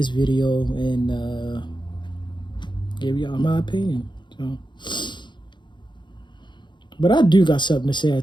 video and give y'all my opinion. So, but I do got something to say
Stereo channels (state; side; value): late; right; 0.22 ms